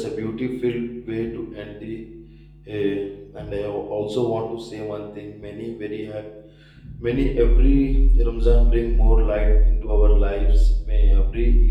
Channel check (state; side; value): identical; both; correlation 1.00